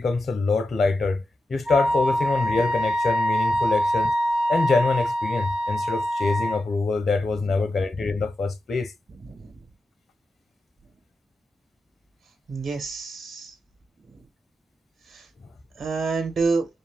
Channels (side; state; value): both; normal; correlation 0.90